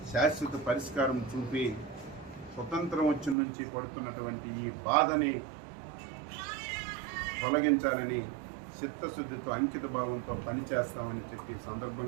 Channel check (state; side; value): drops out; left; at 3.4 s